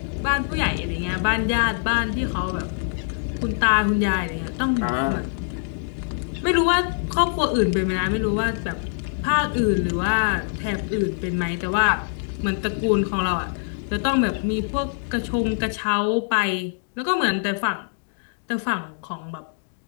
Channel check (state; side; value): silent; right; digital silence